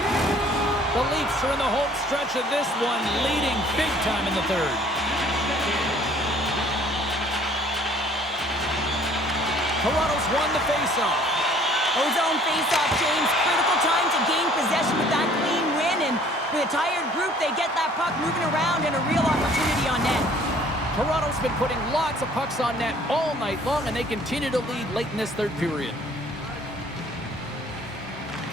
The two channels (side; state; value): both; normal; correlation 0.56